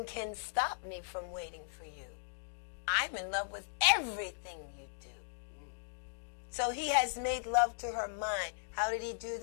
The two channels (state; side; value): silent; right; digital silence